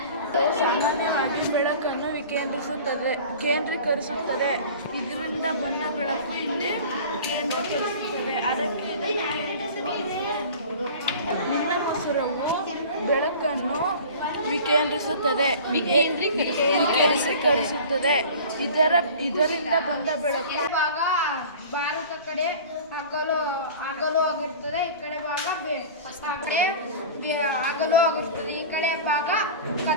ಸಾಮಾನ್ಯವಾಗಿ ಬೆಳಕನ್ನು ಕೇಂದ್ರೀಕರಿಸುತ್ತದೆ. ಇದರಿಂದ ಬಂದ ಬೆಳಕು ಇಲ್ಲಿ ಕೇಂದ್ರೀಕರಿಸುತ್ತದೆ. ಅದಕ್ಕೆ ಇದನ್ನು ಕೇಂದ್ರಿಸುವ ಎನ್ನುವುದು. ನೀಲಮಸೂರವು ಬೆಳಕನ್ನು ವಿಕೇಂದ್ರೀಕರಿಸುತ್ತದೆ. ಇದರಿಂದ ಬಂದ ಬೆಳಕು ಭಾಗ ಭಾರತ ಕಡೆ ಹಗಲು ಆಗಿರ್ತದೆ. ಈ ಕಡೆ ಭಾಗ ಹಗಲು ಆಗಿರ್ತದೆ. ಈ ಕಡೆ ಭಾಗ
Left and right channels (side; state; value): both; inverted; correlation -0.39